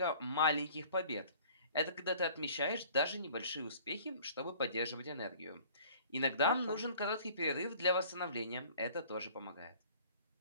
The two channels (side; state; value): both; inverted; correlation -0.50